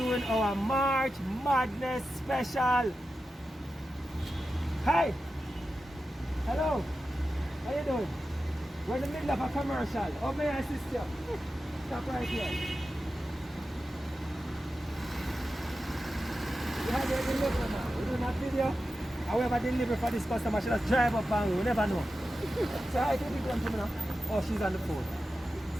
our March Madness special. Hi. Hello. How you doing? We're in the middle of a commercial. Oh, may I assist you? Stop right here. We have your delivery now. We're doing a video. However, delivery for this customer, she just drive up and we never know. So I think people to me now. Oh, she's on the phone.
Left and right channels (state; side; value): normal; both; correlation 0.92